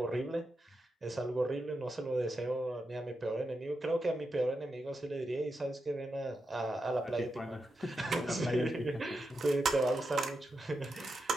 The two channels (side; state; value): both; normal; correlation 0.87